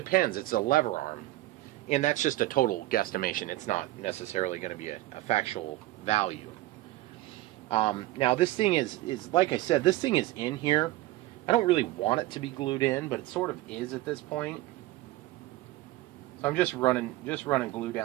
It's a lever arm. And that's just a total guesstimation. It's not necessarily going to be a factual value. Now, this thing is, like I said, this thing is in here. I don't really want it to be glued in, but it sort of is at this point. So I'm just running glue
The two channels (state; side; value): quieter; left; 17.2 dB